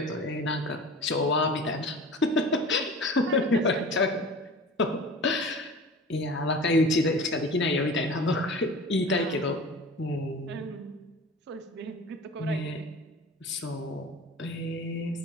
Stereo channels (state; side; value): normal; both; correlation 0.38